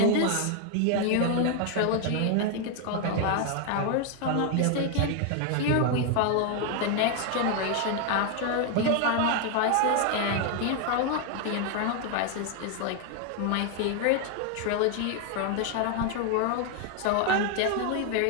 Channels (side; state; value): both; different; correlation 0.01